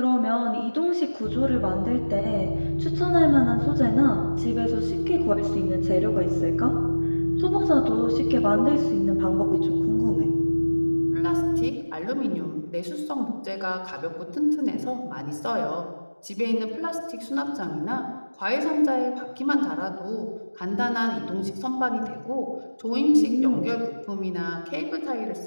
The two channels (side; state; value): both; inverted; correlation -1.00